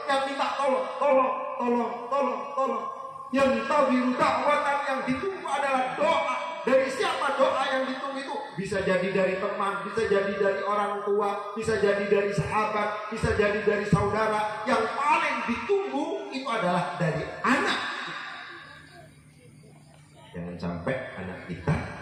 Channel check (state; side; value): identical; both; correlation 1.00